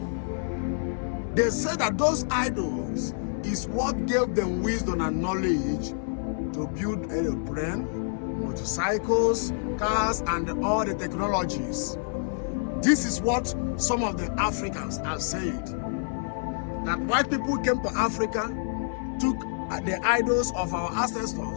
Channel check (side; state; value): right; silent; 60 dB below the other